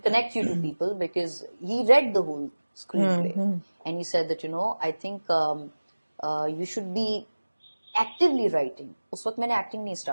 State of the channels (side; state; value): both; inverted; correlation -1.00